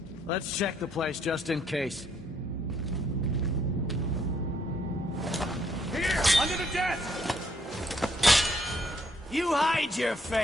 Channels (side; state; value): both; normal; correlation 0.69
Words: Let's check the place just in case. Here, under the desk! You hide your